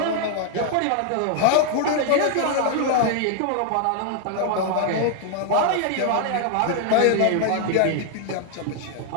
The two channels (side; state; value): both; different; correlation 0.00